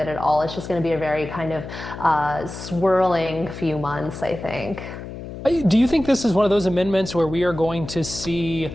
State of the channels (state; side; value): noise; left; hum, 10 dB below the sound